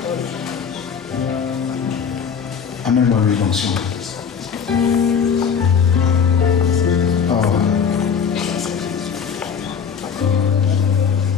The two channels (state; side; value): quieter; right; 6.8 dB